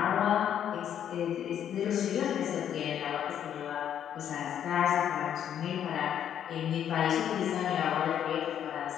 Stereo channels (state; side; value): quieter; right; 9.6 dB